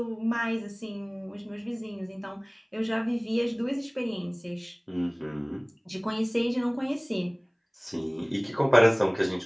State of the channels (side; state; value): both; identical; correlation 1.00